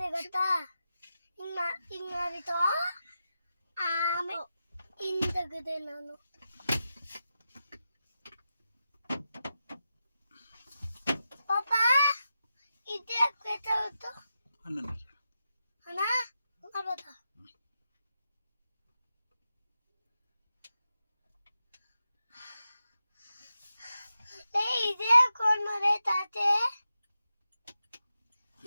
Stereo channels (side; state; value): both; inverted; correlation -0.90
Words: ಗೊತ್ತಾ? ಹಿಂಗ್ ಮಾಡಿತು ಆಮೇಲೆ ಹಿಂದಗದೆ ನಾನು ಪಾಪ ಇದೇ ಗೊತ್ತಾಯ್ತು ಅಣ್ಣ ಮಾಡ್ಬೋದಾ? ಇದೇ ಕೋನ್ ಮರೆ ತಾತೆ